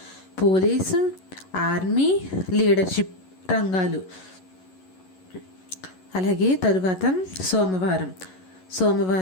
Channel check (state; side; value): late; right; 11 ms